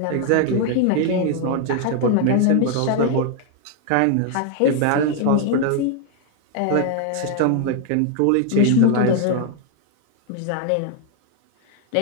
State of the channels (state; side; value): different; both; correlation 0.00